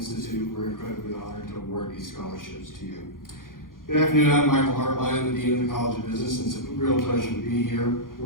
we're incredibly honored to award these scholarships to you. Good afternoon, I'm Michael Hartline, the Dean of the College of Business, and it's a real pleasure to be here.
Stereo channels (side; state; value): right; late; 0.90 ms